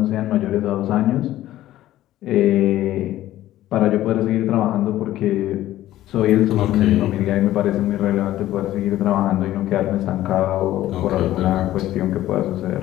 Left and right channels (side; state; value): right; quieter; 14.3 dB